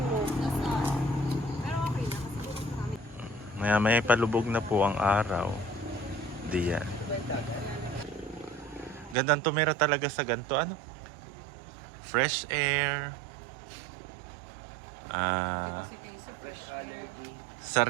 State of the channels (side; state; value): left; drops out; at 9.2 s